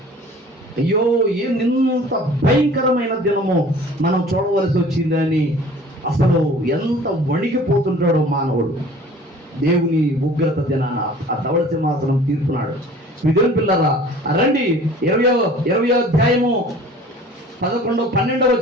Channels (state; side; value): normal; both; correlation 0.47